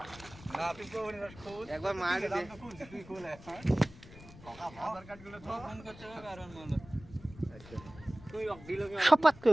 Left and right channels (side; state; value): left; noise; rumble, 19 dB below the sound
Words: না তুই কোন খোঁজ একবার মার দে তুই কোলে হ্যাঁ আধার কার্ড গুলো তো ফোন করতে হবে কারণ মানে আচ্ছা তুই দিল কি সপাত